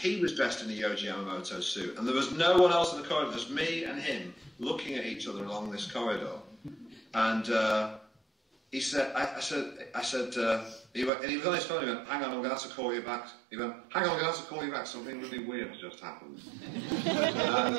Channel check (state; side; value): drops out; left; at 11.1 s